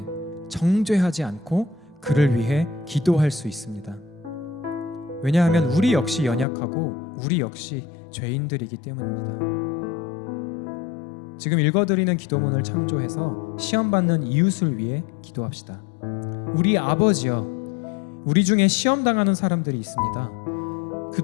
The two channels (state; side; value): drops out; right; at 6.5 s